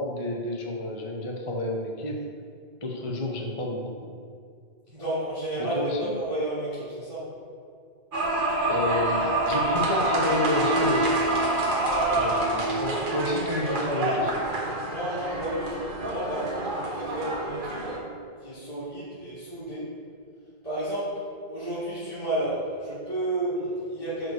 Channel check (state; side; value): late; left; 2.4 ms